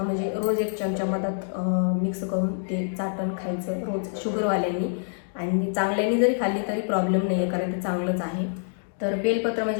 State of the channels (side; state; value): right; silent; digital silence